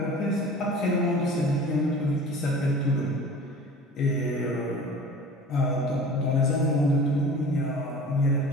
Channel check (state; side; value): normal; both; correlation 0.41